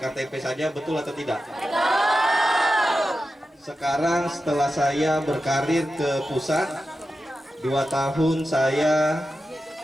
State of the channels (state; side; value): normal; both; correlation 0.91